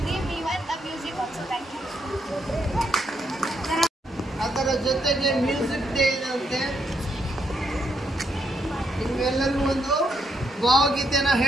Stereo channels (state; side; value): normal; both; correlation 0.77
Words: even the music also. Thank you. ಅದರ ಜೊತೆಗೆ ಮ್ಯೂಸಿಕ್ ಡೇ ಇರುತ್ತೆ. ನಿಮ್ಗೆಲ್ಲರಿಗೂ ಒಂದು ಭಾವಗೀತೆನ